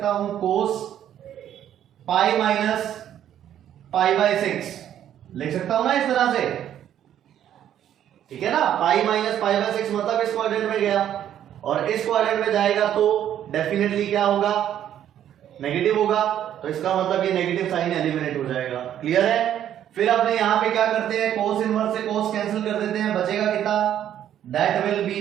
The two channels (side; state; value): left; quieter; 10.6 dB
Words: हूं, कोस पाई माइनस पाई बाय 6 लिख सकता हूं ना इस तरह से, ठीक है ना। पाई माइनस पाई बाय 6 मतलब इस क्वाड्रेंट में गया, और इस क्वाड्रेंट में जाएगा तो डेफिनेटली क्या होगा, नेगेटिव होगा। तो इसका मतलब ये नेगेटिव साइन एलिमिनेट हो जाएगा। क्लियर है। फिर अपने यहां पे क्या करते हैं, कोस इनवर्स से कोस कैंसिल कर देते हैं, बचेगा कितना, that will be